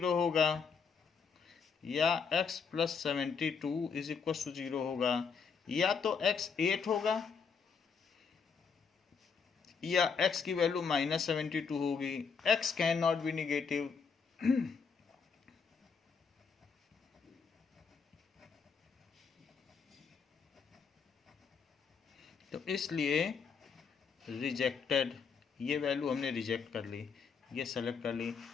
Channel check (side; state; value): right; quieter; 5.8 dB